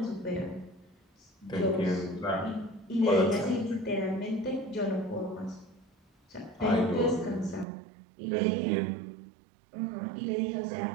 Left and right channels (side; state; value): left; drops out; at 7.7 s